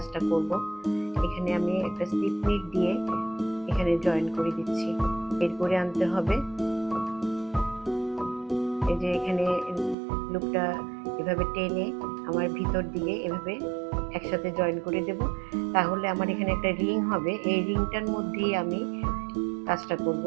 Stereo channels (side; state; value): left; drops out; at 10.0 s